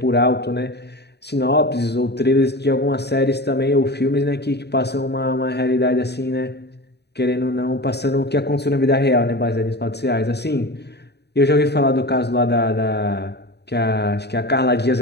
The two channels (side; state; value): right; late; 0.48 ms